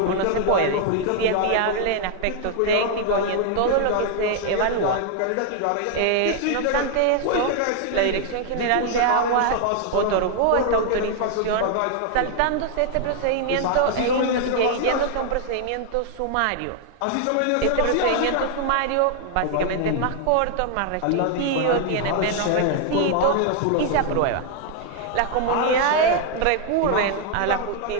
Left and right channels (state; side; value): different; both; correlation 0.00